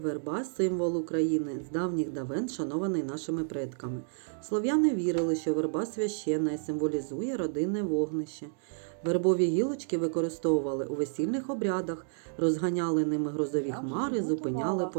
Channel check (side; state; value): left; silent; digital silence